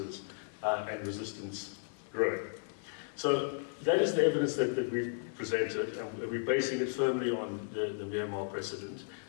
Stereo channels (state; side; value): silent; right; digital silence